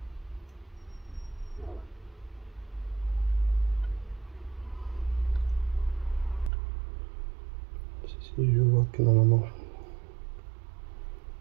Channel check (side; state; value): left; drops out; at 6.5 s